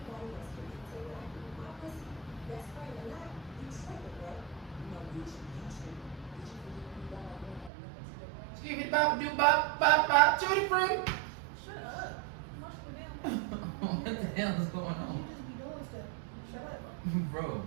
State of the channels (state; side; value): drops out; left; at 7.7 s